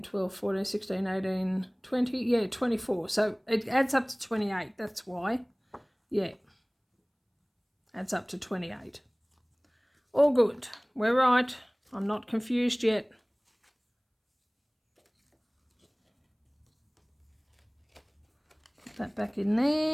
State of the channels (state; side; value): identical; both; correlation 1.00